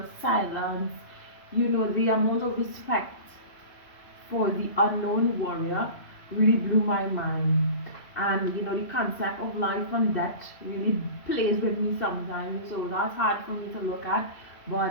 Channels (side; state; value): right; late; 2.7 ms